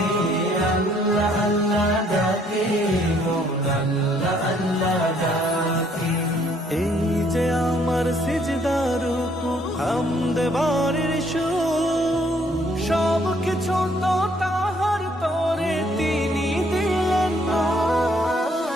আল্লাহ আল্লাহ ডাকে মন আল্লাহ আল্লাহ ডাকে। এই যে আমার সিজদার রুকু হামদ বারের সুর, সব কিছু তো তাহার তরে তিনি দিলেন না।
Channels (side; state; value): both; normal; correlation 0.65